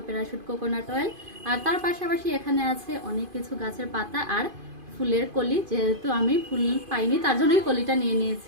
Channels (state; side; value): late; left; 2.5 ms